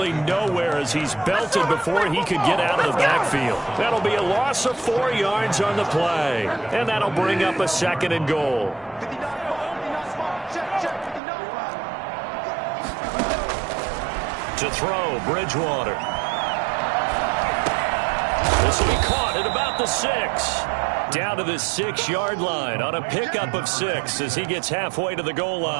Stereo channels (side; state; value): left; drops out; at 11.2 s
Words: nowhere as he's belted before he could get out of the backfield. That'll be a loss of 4 yards on the play. And that'll bring up a 2nd and goal. To throw, Bridgewater. This will be caught at about the 6. Down to the 6-yard line on a pickup of 6 as he gets halfway to the goal